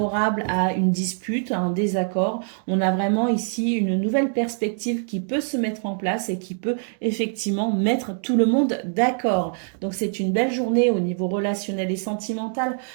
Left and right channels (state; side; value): silent; left; 60 dB below the other